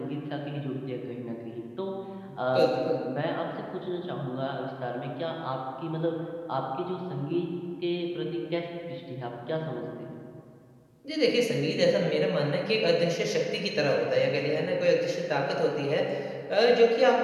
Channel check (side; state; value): both; identical; correlation 1.00